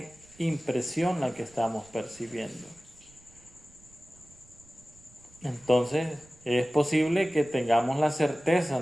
impresión la que estamos percibiendo. Entonces, es posible que tengamos la certeza,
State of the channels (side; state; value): right; noise; rumble, 26 dB below the sound